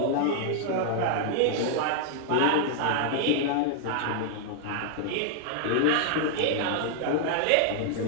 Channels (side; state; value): both; different; correlation 0.00